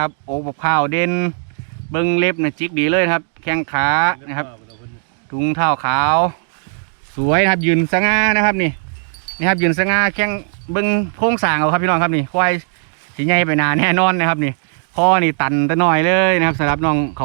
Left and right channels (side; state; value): left; silent; digital silence